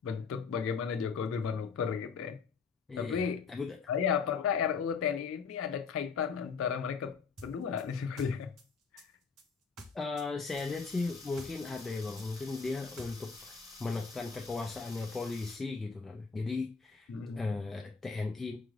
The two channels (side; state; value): right; quieter; 5.4 dB